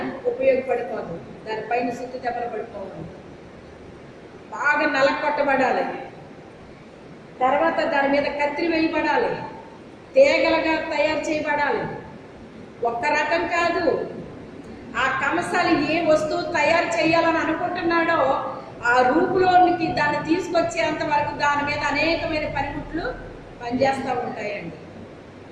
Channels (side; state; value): both; identical; correlation 1.00